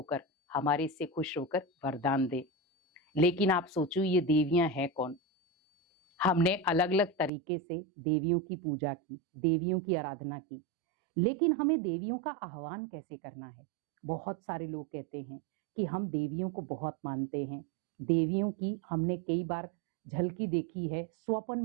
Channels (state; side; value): drops out; left; at 7.3 s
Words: हमारे से खुश होकर वरदान दे। लेकिन आप सोचो ये देवियां हैं कौन? हमने अलग अलग तरीके से देवियों की पूजा की, देवियों की आराधना की, लेकिन हमें देवियों का आह्वान कैसे करना है? बहुत सारे लोग कहते हैं कि हम देवियों को बहुत मानते हैं, देवियों की हमने कई बार झलकी देखी है, स्वप्न